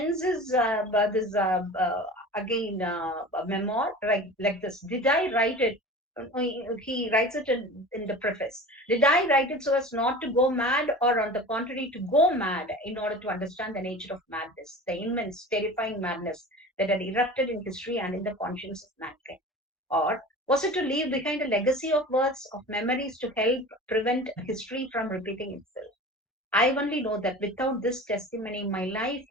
his this again memoir like this. Did I write it? He writes it in the preface. Did I write it so as not to go mad, or on the contrary, to go mad in order to understand the nature of madness, the immense, terrifying madness that had erupted in history and in the conscience of mankind? Or was it to leave behind a legacy of words, of memories to help prevent history from repeating itself? I only know that without this testimony, my life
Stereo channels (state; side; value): normal; both; correlation 0.36